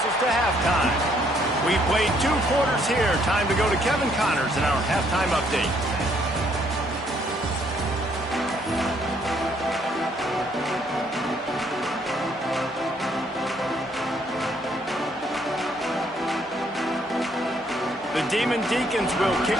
us to halftime. We've played 2 quarters here. Time to go to Kevin Connors in our halftime update. The Demon Deacons will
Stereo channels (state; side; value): normal; both; correlation 0.68